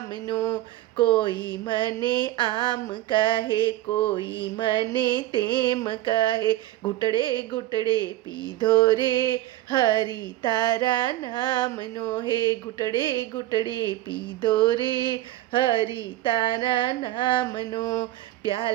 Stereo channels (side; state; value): left; quieter; 15.4 dB